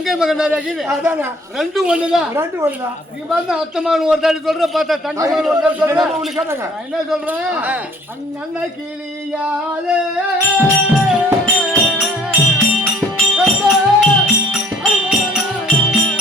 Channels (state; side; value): normal; both; correlation 0.56